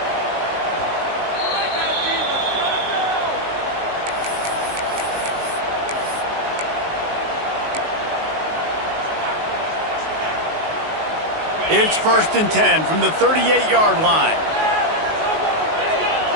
It's 1st and 10 from the 38-yard line.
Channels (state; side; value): late; left; 19 ms